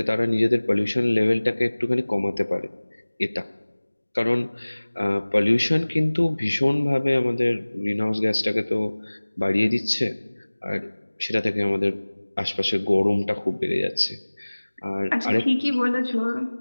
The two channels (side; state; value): both; inverted; correlation -1.00